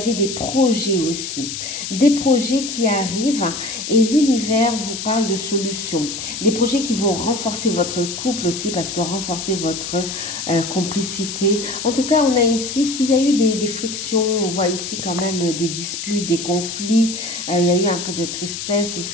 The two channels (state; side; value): noise; left; hiss, 6 dB below the sound